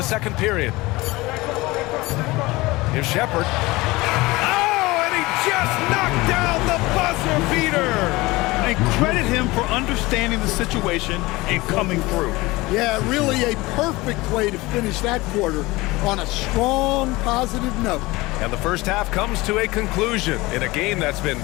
second period. Here's Shepard. Oh, and he just knocked down the buzzer beater. And credit him for understanding the situation and coming through. Yeah, really a perfect way to finish that quarter on a strong, positive note. And the first half comes to a conclusion in a game that's been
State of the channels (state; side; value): quieter; right; 21.2 dB